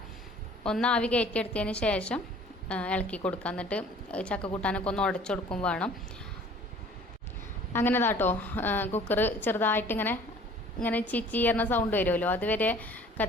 ഒന്ന് ആവി കയറ്റിയെടുത്തതിന് ശേഷം ഇളക്കി കൊടുക്കുക. എന്നിട്ട് ചക്ക കൂട്ടാനൊക്കെ ഒന്ന് ഉടച്ചു കൊടുക്കും വേണം. അങ്ങനെ കുക്കർ ചെറുതായിട്ട് ഇങ്ങനെ ചീച്ചീർന്ന സൗണ്ട് വരുമല്ലോ, അതുവരെ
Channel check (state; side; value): normal; both; correlation 0.51